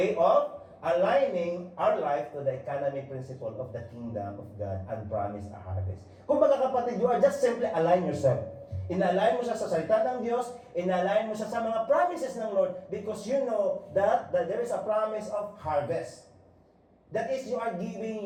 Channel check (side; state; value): both; identical; correlation 1.00